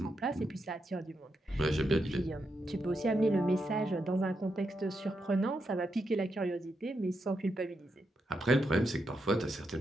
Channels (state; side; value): normal; both; correlation 0.84